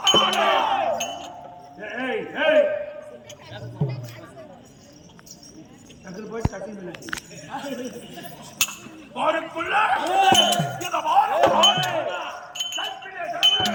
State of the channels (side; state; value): both; identical; correlation 1.00